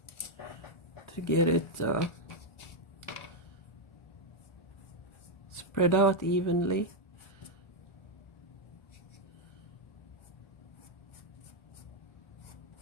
to get it spread out evenly.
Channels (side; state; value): right; late; 1.4 ms